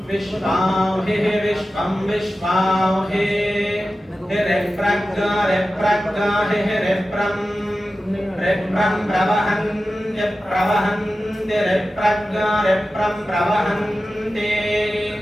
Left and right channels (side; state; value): both; normal; correlation 0.94